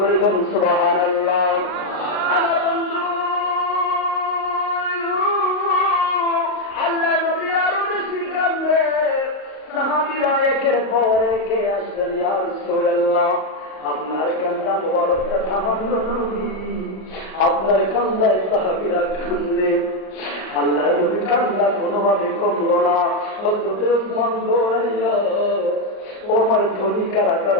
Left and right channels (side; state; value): right; late; 38 ms